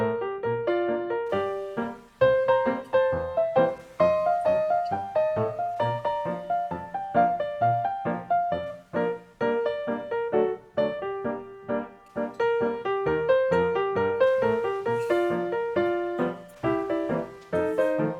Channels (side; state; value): both; identical; correlation 1.00